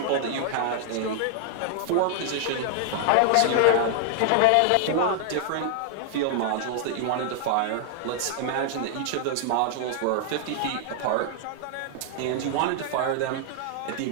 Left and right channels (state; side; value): different; both; correlation 0.00